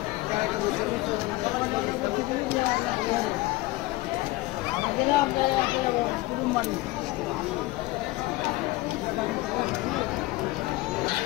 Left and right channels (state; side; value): quieter; right; 19.8 dB